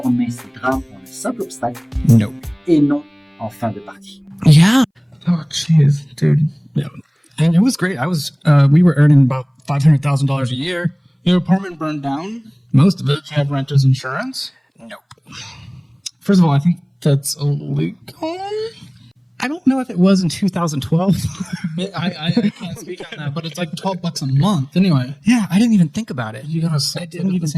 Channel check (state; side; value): identical; both; correlation 1.00